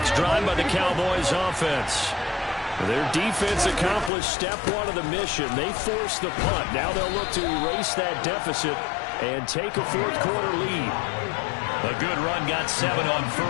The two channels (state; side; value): drops out; right; at 4.1 s